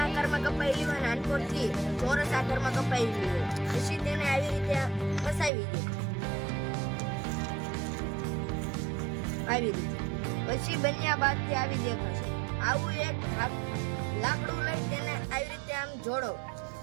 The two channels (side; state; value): left; drops out; at 5.5 s